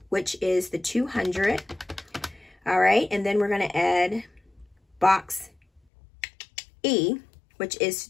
which is the $200. All right, and then we're going to add box E, which is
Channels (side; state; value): right; drops out; at 5.8 s